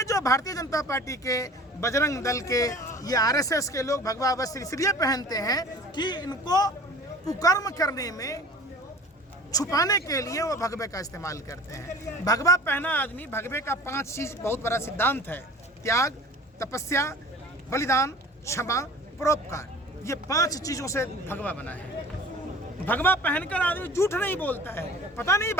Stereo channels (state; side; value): normal; both; correlation 0.43